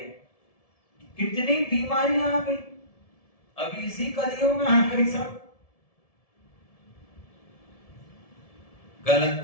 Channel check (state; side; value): late; right; 1.7 ms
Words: कितनी बीमारियां आ गई अभी इसी कलियों में आ गई सब।